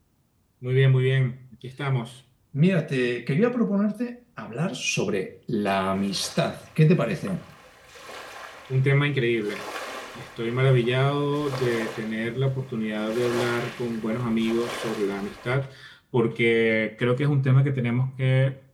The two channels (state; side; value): identical; both; correlation 1.00